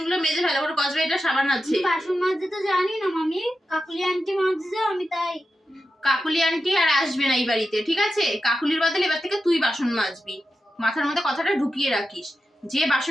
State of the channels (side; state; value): both; normal; correlation 0.90